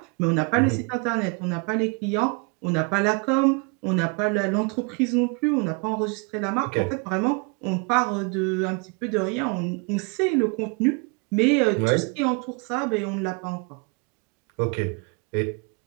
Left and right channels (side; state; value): left; quieter; 32.0 dB